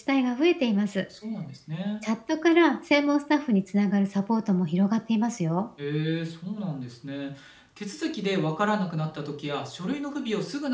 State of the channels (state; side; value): identical; both; correlation 1.00